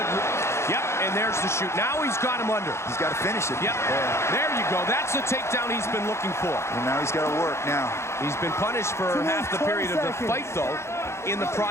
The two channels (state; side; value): late; right; 0.13 ms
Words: yep, and there's the shoot. Now he's got him under. He's got to finish it. Yep, there you go. That's the takedown he's been looking for. And now he's got to work now. He's been punished for half the period of the fight, though, in the